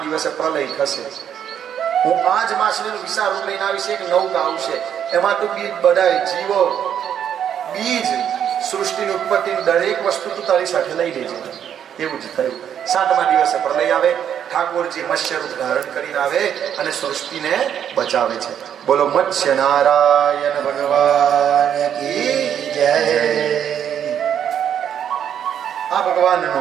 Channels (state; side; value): quieter; left; 9.2 dB